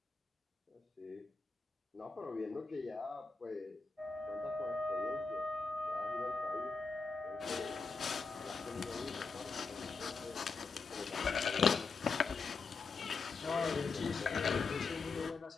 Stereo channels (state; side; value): quieter; right; 4.4 dB